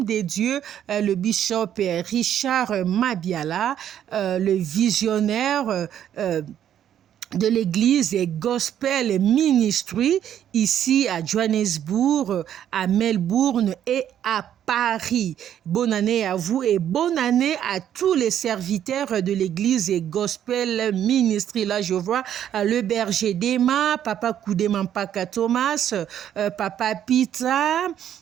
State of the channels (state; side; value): quieter; left; 10.2 dB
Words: de Dieu, le bishop Richard Mabiala, le visionnaire de l'église Gospel Ministry ici à Johannesburg, à Melbourne et à Paris. Bonne année à vous et bonne année à tous les serviteurs de l'église Gospel Ministry. Là, je vois le berger d'Emma, Papa Koudemampaka Thomas, Papa Pita,